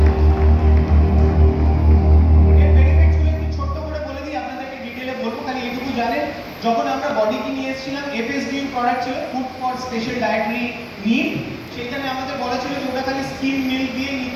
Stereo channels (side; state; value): both; identical; correlation 1.00